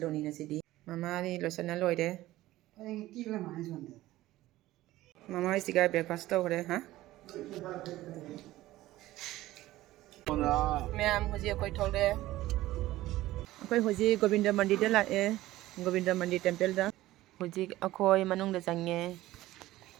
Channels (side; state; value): left; quieter; 16.3 dB